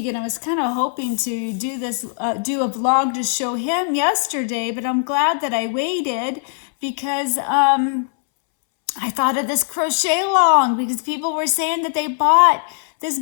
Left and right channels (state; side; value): silent; right; 65 dB below the other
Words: and I was kind of hoping to do a vlog to show him yesterday, but I'm glad that I waited because I thought of this crochet along because people were saying that they bought this